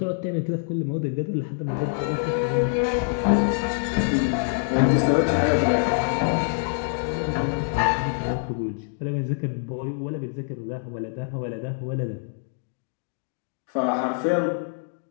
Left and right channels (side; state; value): right; silent; digital silence